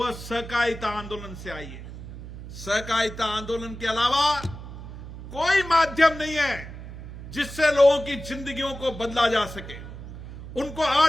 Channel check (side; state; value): right; noise; hum, 12 dB below the sound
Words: सहकारिता आंदोलन से आई है। सहकारिता आंदोलन के अलावा कोई माध्यम नहीं है जिससे लोगों की जिंदगियों को बदला जा सके, उनको